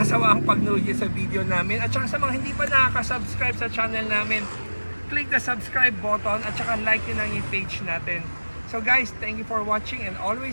pagnood sa video namin. At saka sa mga hindi pa nakaka-subscribe sa channel namin, click the subscribe button at saka like nyo lang yung page natin. So guys, thank you for watching, and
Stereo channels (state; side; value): inverted; both; correlation -1.00